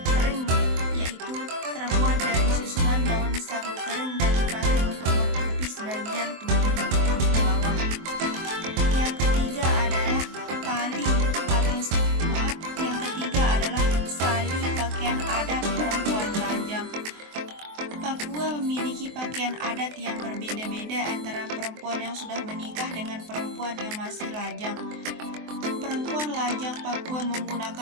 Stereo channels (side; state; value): left; late; 23 ms